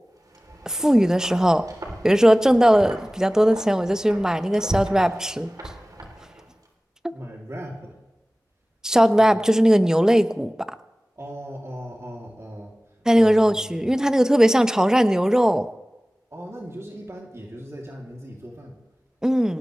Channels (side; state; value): both; normal; correlation 0.98